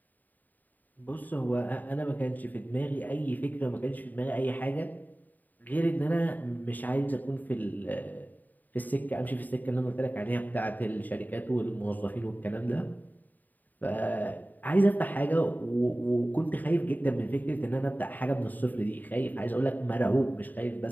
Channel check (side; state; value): right; late; 0.085 ms